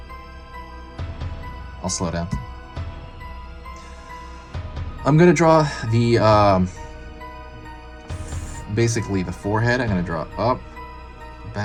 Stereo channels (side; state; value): both; identical; correlation 1.00